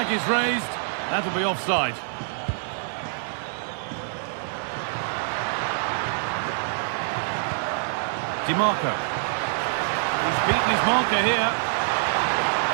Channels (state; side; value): silent; left; digital silence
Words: is raised. That'll be offside. Di Marco. He's beaten his marker here.